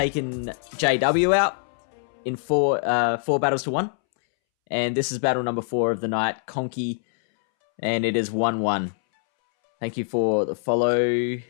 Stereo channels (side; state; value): right; silent; 63 dB below the other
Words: JW out in 4 battles to 1. And this is battle number 4 of the night, Conkey, and it is 1-1. Thank you for the follow.